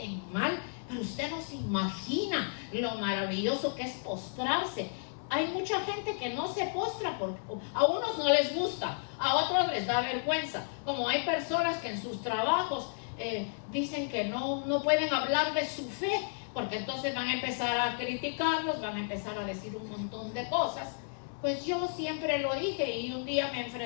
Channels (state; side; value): silent; right; 55 dB below the other